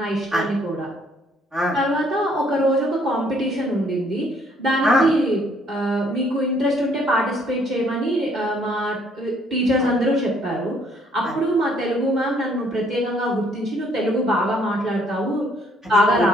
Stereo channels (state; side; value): normal; both; correlation 0.65